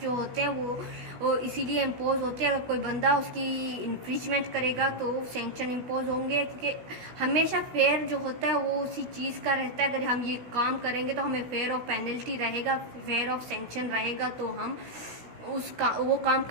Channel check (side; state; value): left; late; 16 ms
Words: जो होते हैं वो इसीलिए इम्पोज होते हैं। अगर कोई बंदा उसकी इन्फ्रिंजमेंट करेगा तो सैंक्शन इम्पोज होंगे, क्योंकि हमेशा फेयर जो होता है वो उसी चीज़ का रहता है। अगर हम ये काम करेंगे तो हमें फेयर ऑफ पेनल्टी रहेगा, फेयर ऑफ सैंक्शन रहेगा, तो हम वो काम